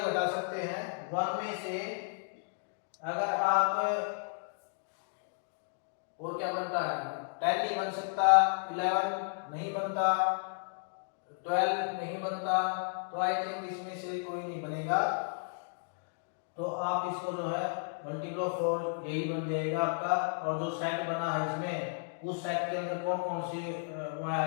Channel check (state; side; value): silent; right; digital silence